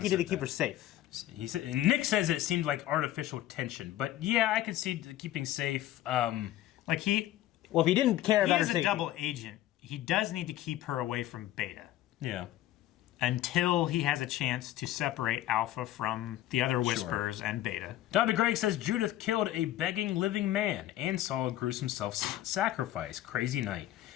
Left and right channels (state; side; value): quieter; right; 14.0 dB